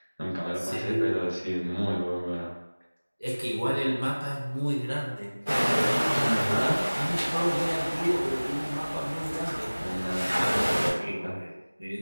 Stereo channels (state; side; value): inverted; both; correlation -1.00